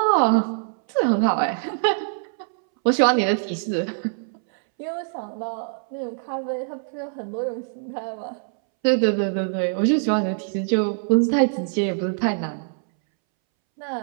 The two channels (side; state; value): left; silent; 63 dB below the other